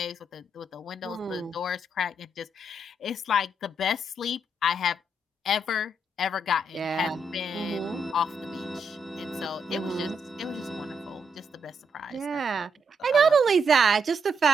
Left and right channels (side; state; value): both; normal; correlation 0.78